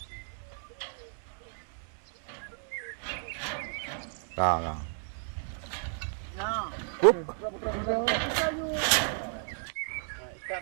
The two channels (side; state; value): left; silent; 56 dB below the other